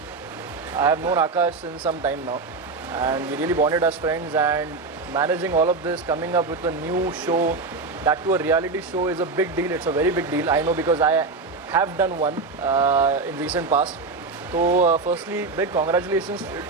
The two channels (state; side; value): quieter; left; 4.0 dB